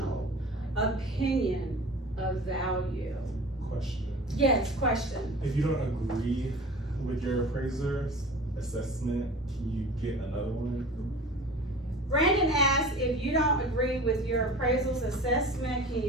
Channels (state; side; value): normal; both; correlation 0.39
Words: opinion of value. Question, Yes, question. if you don't agree with your appraiser's assessment, can you get another one? Brandon asked, if you don't agree with your appraisal's assessment, can